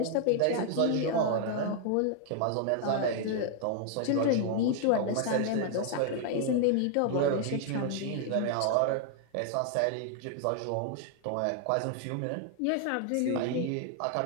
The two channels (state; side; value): different; both; correlation 0.00